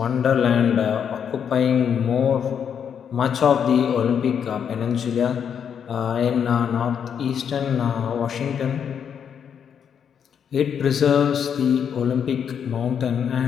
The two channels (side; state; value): right; quieter; 7.8 dB